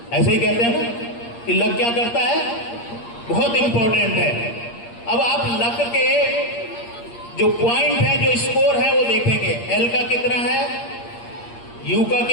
ऐसे ही कहते हैं ना कि लग क्या करता है, बहुत इंपॉर्टेंट है। अब आप लग के जो पॉइंट है, जो स्कोर है, वो देखेंगे। एल का कितना है, यू का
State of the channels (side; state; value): right; late; 8.6 ms